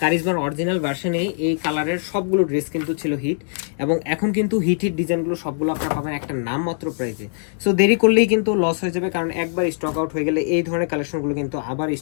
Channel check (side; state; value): right; silent; digital silence